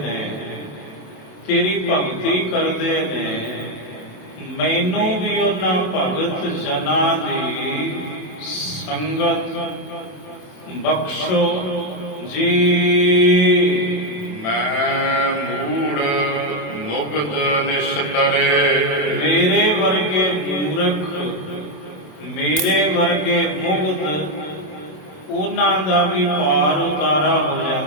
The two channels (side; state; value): right; late; 27 ms